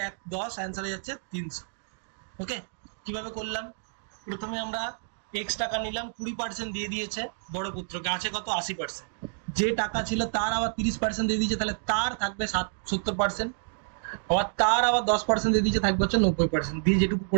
10 অ্যান্সার হয়ে যাচ্ছে 300। ওকে, কিভাবে করলাম? প্রথমে আমরা x টাকা নিলাম, 20% দিয়ে দিয়েছে বড় পুত্রকে, আছে কত 80%। যে টাকা ছিল তার আবার 30% দিয়ে দিয়েছে, তাহলে তার থাকবে 70%, আবার তার আবার 10% দিয়ে দিয়েছে, থাকবে হচ্ছে 90%। দিয়ে যেটুকু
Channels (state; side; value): silent; left; digital silence